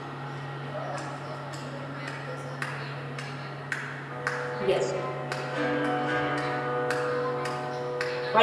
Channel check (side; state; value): both; identical; correlation 1.00